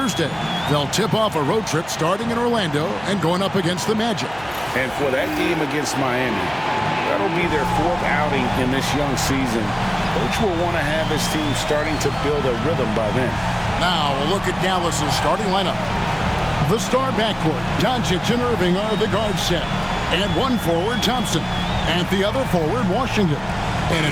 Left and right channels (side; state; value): right; noise; hum, 21 dB below the sound